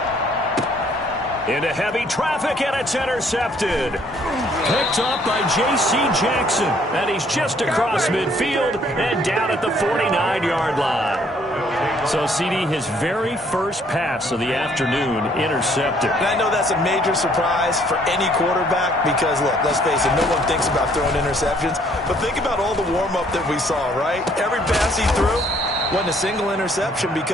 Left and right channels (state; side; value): normal; both; correlation 0.63